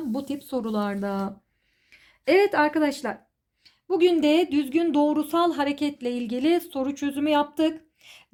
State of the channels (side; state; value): both; identical; correlation 1.00